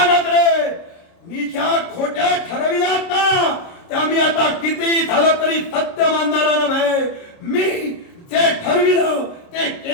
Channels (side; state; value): right; late; 30 ms